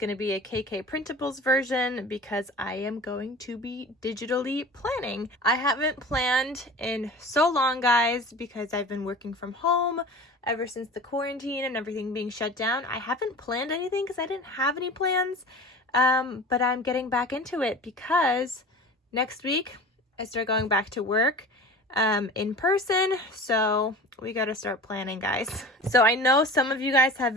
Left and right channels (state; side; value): normal; both; correlation 0.37